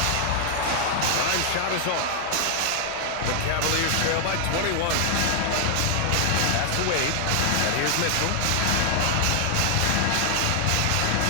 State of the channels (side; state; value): both; different; correlation 0.00